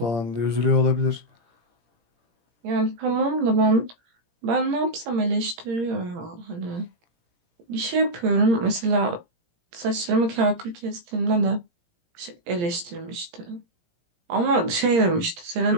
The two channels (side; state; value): left; late; 17 ms